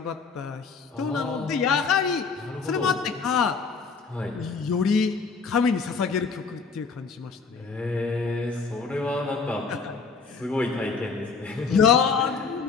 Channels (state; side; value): quieter; right; 5.0 dB